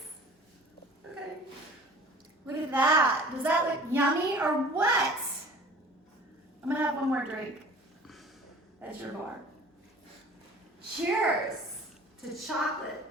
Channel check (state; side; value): normal; both; correlation 0.46